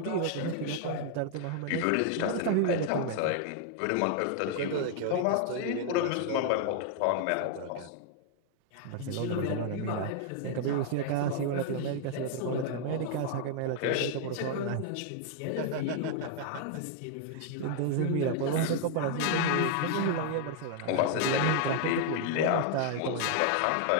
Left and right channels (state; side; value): different; both; correlation 0.00